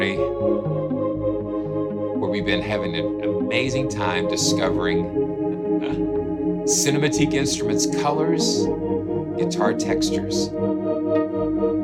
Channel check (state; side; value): identical; both; correlation 1.00